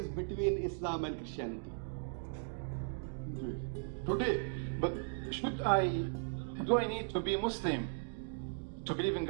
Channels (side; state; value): left; silent; digital silence